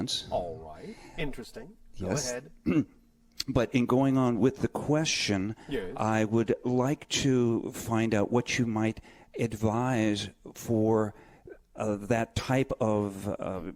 All right. Interesting. Go Yes. ahead. But in going on with the question, Yes. I would like to find out what you might advise for that type of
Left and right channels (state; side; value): identical; both; correlation 1.00